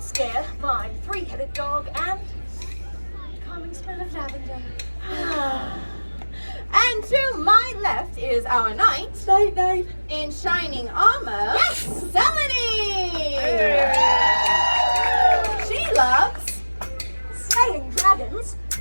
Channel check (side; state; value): both; inverted; correlation -1.00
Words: scare. My three-headed dog and calming smell of lavender. And to my left is our knight Night. in shining armor. Yes! Selene! She loves Slaying dragons.